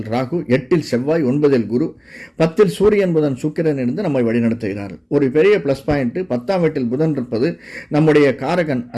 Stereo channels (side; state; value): both; identical; correlation 1.00